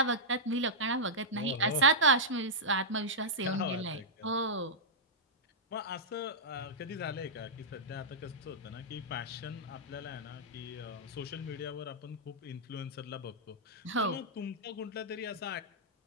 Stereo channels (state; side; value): normal; both; correlation -0.10